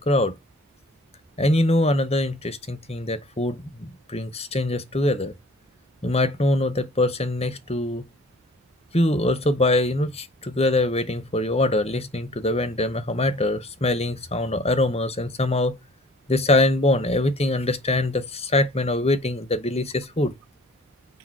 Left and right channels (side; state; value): both; normal; correlation 0.51